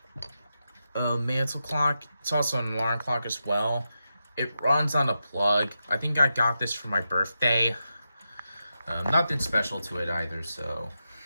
mantle clock. It's also an alarm clock as well. It runs on a plug. I think I got this for my birthday. Nothing special to it either, so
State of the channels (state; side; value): inverted; both; correlation -0.88